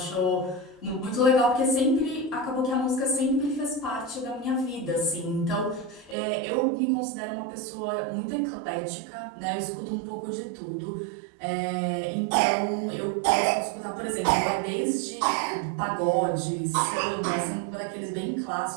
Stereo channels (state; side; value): drops out; left; at 6.2 s